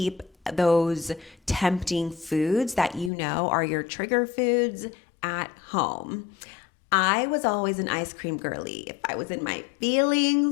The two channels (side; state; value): right; drops out; at 3.1 s